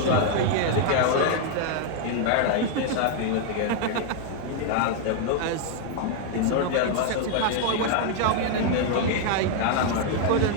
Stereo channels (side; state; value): both; different; correlation 0.00